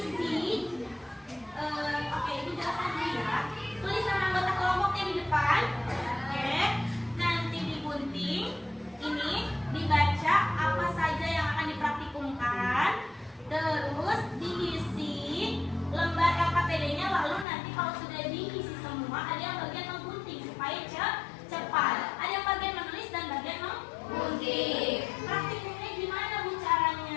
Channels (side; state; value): right; drops out; at 17.4 s